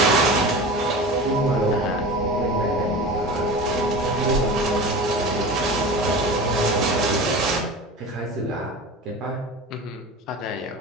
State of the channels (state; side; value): normal; both; correlation 0.32